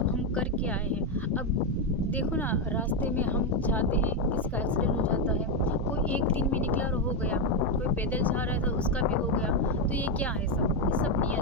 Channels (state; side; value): normal; both; correlation 0.06